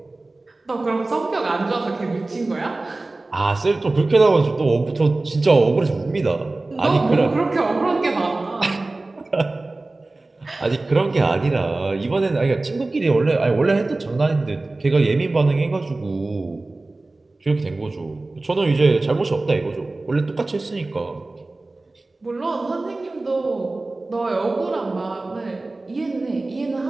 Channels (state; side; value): quieter; left; 3.1 dB